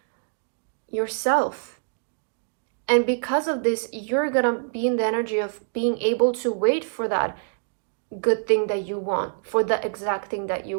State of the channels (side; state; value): left; silent; digital silence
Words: yourself. And because of this, you're gonna be in the energy of being able to wait for that good thing that you want, for the exact thing that you